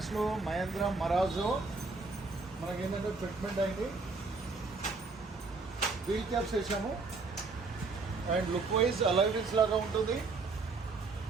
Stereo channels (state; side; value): quieter; left; 4.1 dB